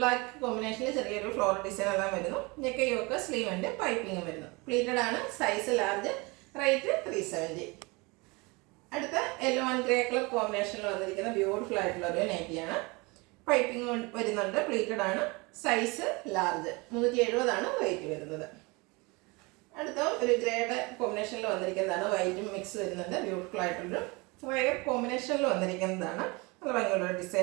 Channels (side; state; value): left; quieter; 26.4 dB